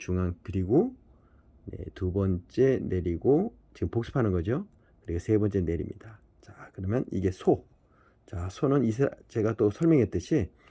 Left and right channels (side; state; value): both; identical; correlation 1.00